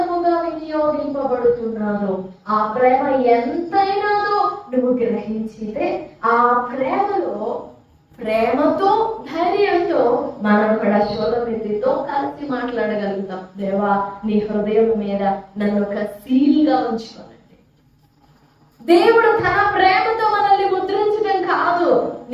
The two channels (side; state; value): both; identical; correlation 1.00